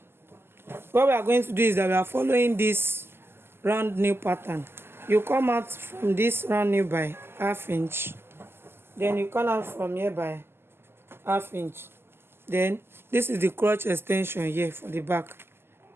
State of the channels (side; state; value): left; late; 0.12 ms